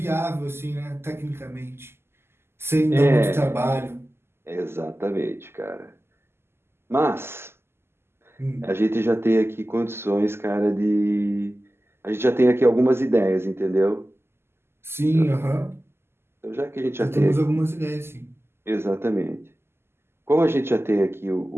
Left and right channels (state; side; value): late; left; 0.12 ms